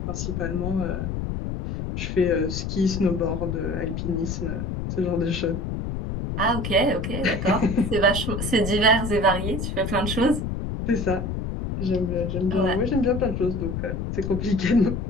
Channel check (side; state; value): left; noise; rumble, 3 dB below the sound